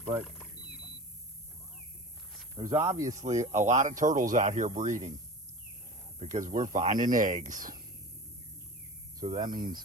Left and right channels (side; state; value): both; normal; correlation 0.34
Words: but there's obviously a lot of turtles out here breeding because we're finding eggs. So that